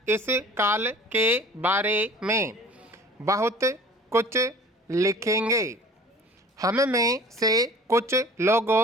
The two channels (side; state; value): both; normal; correlation 0.46